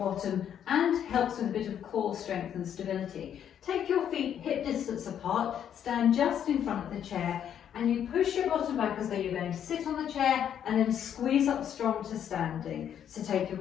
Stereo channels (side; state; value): right; quieter; 9.3 dB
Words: and helps with a bit of core strength and stability. Take your feet hip distance apart, stand just in front of the chair, and you push your bottom back as though you're going to sit on the chair and then squeeze up strong to standing. So take your